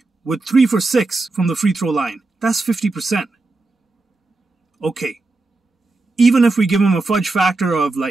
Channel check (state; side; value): quieter; left; 3.4 dB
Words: with 3 for 6 from the free throw line. That's 50%. Okay. Even if we give him a fudge factor of